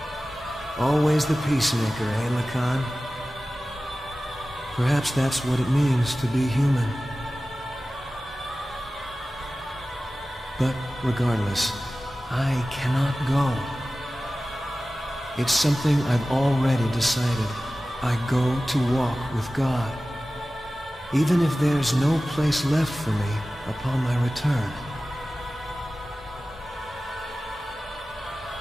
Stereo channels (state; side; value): normal; both; correlation 0.96